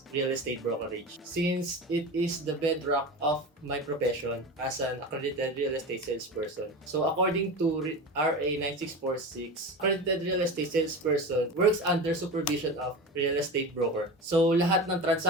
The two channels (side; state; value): both; normal; correlation 0.27